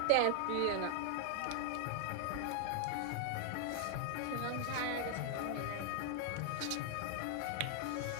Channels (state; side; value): different; both; correlation 0.00